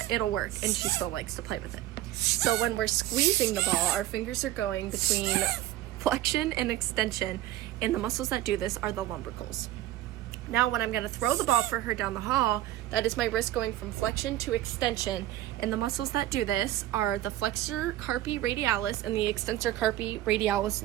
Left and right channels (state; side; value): quieter; left; 14.3 dB